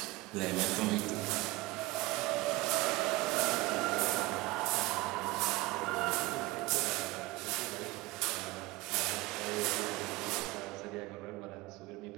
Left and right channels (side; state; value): left; quieter; 20.7 dB